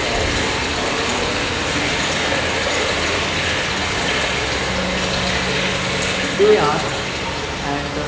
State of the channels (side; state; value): both; identical; correlation 1.00